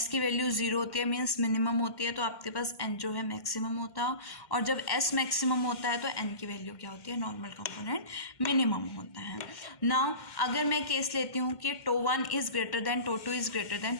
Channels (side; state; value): right; late; 2.1 ms